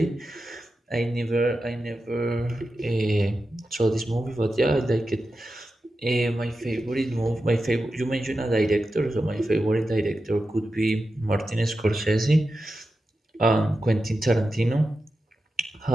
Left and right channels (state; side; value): normal; both; correlation 0.91